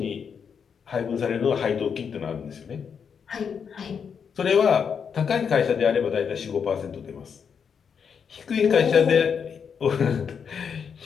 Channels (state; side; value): quieter; right; 6.8 dB